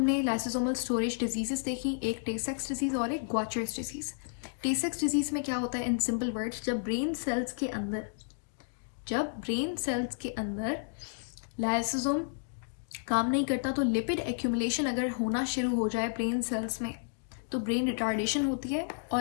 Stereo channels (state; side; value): silent; right; digital silence